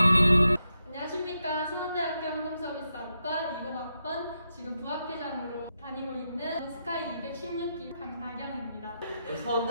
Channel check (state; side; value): inverted; both; correlation -0.85